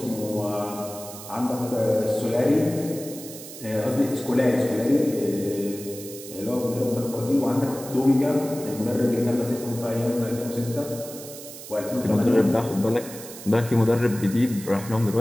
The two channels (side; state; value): right; noise; hiss, 13 dB below the sound